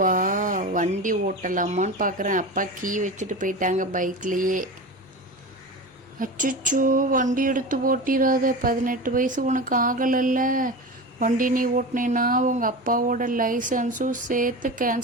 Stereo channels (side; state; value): both; normal; correlation 0.28